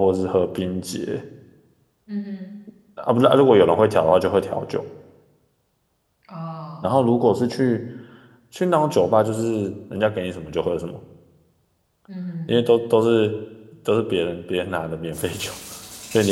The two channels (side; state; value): both; identical; correlation 1.00